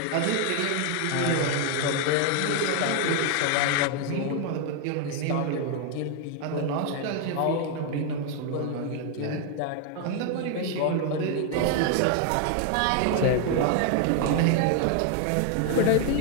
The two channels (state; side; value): different; both; correlation 0.00